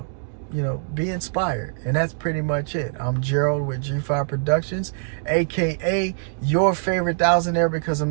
be inspired. And that's pretty much it. I'm Gerald with G5 Productions, aka your favorite thousandaire, because I'm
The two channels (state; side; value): silent; left; digital silence